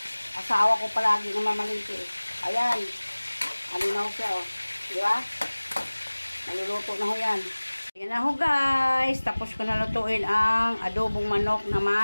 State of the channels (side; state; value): both; inverted; correlation -1.00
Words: Asawa ko palagi namamalingki. Ayan. Ano na ho siya, oh. Diba? Naluluto na ho yan. Ayan na ho guys. Tapos ko na lutuin ang adobong manok na